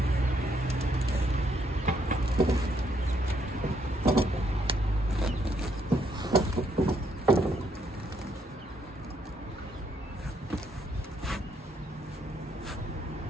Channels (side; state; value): both; normal; correlation 0.72